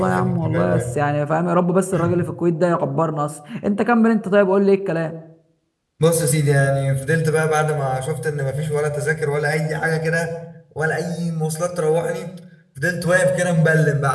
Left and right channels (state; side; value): identical; both; correlation 1.00